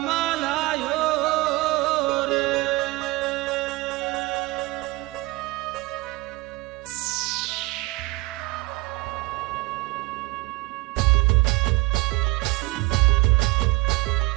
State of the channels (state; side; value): quieter; left; 20.8 dB